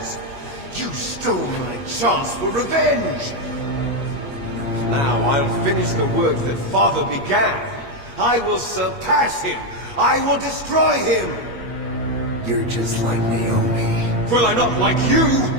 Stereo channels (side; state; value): right; late; 8.4 ms